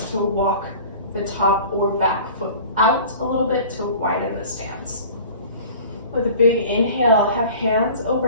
to walk the top or back foot out a little bit to widen the stance. With a big inhale, have hands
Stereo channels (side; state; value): both; inverted; correlation -0.43